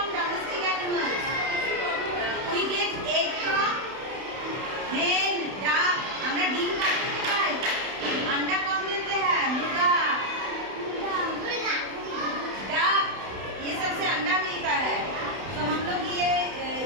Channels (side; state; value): left; late; 31 ms